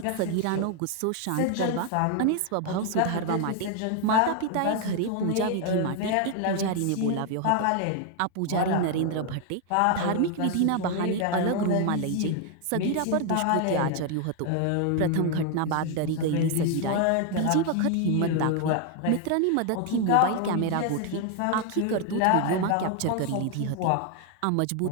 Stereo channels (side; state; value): both; different; correlation 0.00